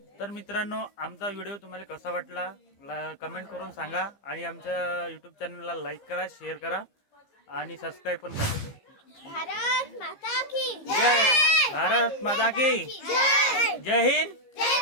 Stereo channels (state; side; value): late; right; 15 ms